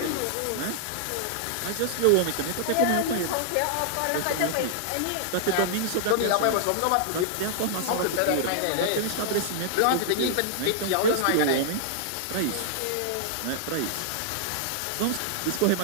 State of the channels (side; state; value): both; different; correlation -0.01